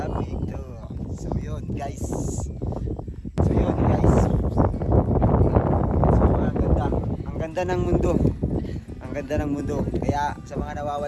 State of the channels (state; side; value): identical; both; correlation 1.00